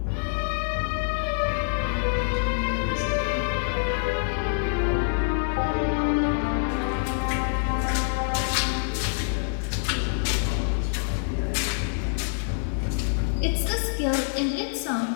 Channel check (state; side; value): silent; right; 61 dB below the other